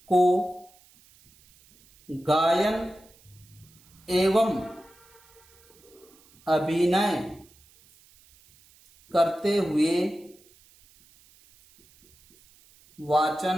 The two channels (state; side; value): noise; right; hiss, 29 dB below the sound